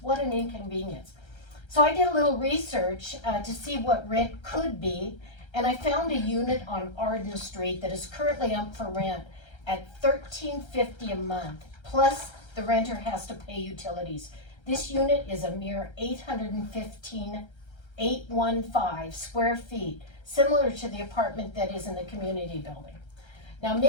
What an inconvenience. So I did a little research to see what rent could be, and I found a unit on Arden Street that is currently up for rent at $13.50 a month, plus the renter has to pay utilities. This unit is a mere 815 square feet, similar to the apartment that is in the community building. Now,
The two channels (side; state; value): right; late; 1.3 ms